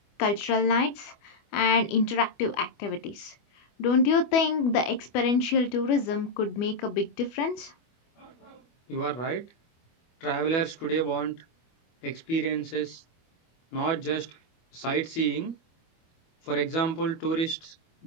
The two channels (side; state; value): right; late; 25 ms